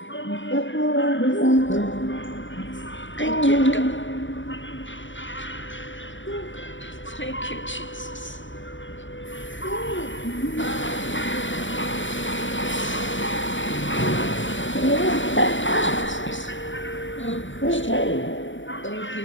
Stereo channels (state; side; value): late; right; 0.55 ms